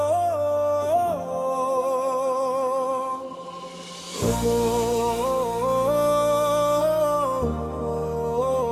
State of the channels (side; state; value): both; identical; correlation 1.00